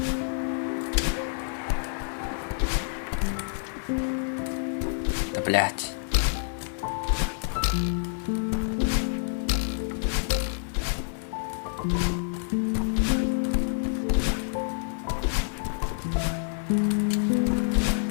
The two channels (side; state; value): right; silent; digital silence